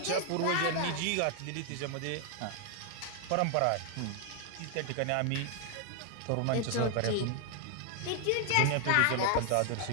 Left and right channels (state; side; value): different; both; correlation 0.00